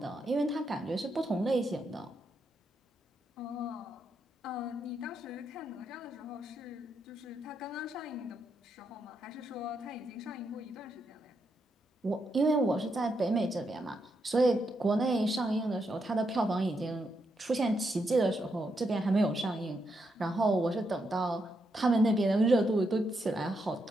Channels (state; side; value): normal; both; correlation 0.81